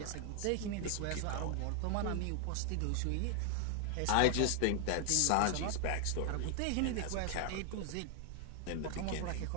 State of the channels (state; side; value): different; both; correlation 0.00